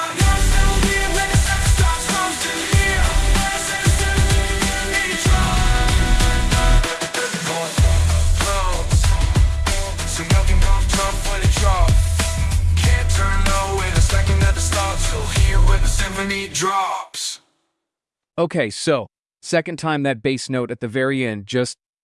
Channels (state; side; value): identical; both; correlation 1.00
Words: I'm still here when the drops. Okay, so, second time that bass note at the very end just